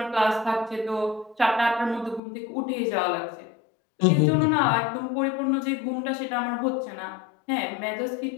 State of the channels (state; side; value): drops out; right; at 2.2 s